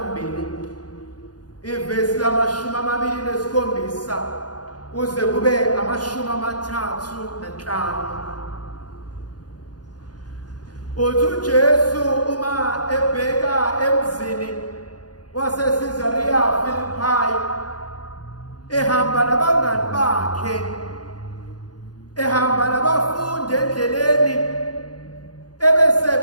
ivesi lama-27 kuze kube ama-35. Uthi uJesu uma ebheka emzini waseCaesarea Philippi ehamba nabangani bakhe, ehamba nabafundi endleleni,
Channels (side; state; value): right; late; 0.69 ms